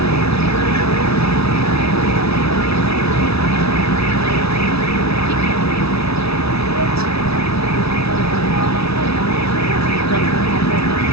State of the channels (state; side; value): late; right; 0.78 ms